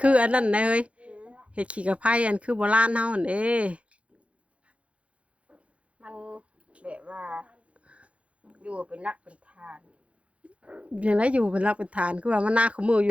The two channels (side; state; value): left; late; 0.062 ms